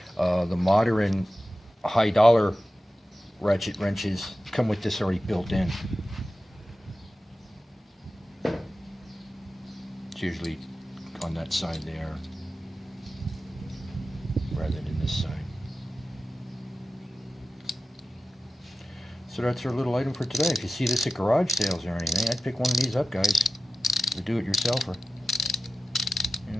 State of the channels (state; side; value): normal; both; correlation 0.93